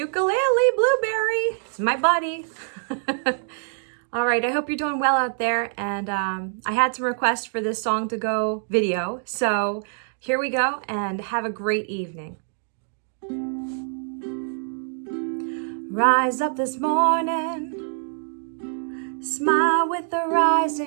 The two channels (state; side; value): silent; left; 62 dB below the other